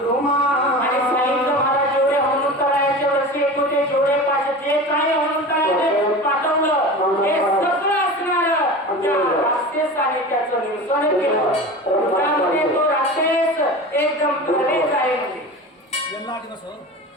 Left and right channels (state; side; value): normal; both; correlation 0.32